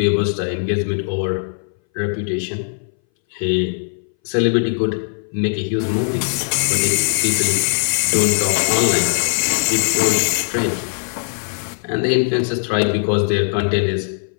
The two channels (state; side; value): silent; right; 62 dB below the other